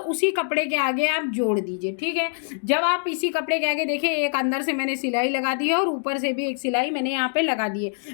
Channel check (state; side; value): silent; right; digital silence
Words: उसी कपड़े के आगे आप जोड़ दीजिए, ठीक है। जब आप इसी कपड़े के आगे देखिए, एक अंदर से मैंने सिलाई लगा दी है और ऊपर से भी एक सिलाई मैंने यहाँ पे लगा दी